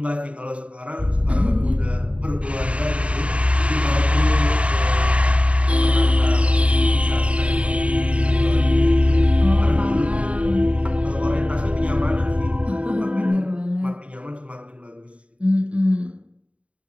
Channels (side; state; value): left; late; 0.063 ms